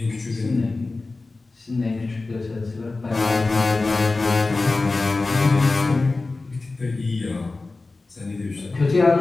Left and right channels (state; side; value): quieter; right; 3.5 dB